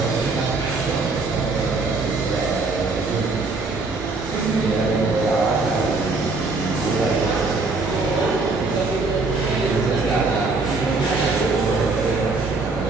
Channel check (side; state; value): left; quieter; 3.7 dB